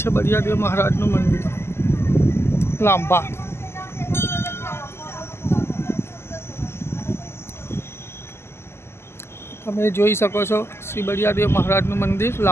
બિડિયાદેવ મહારાજનું મંદિર લાંબા. તમે જોઈ શકો છો શ્રી બિડિયાદેવ મહારાજનું મંદિર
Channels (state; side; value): late; right; 0.12 ms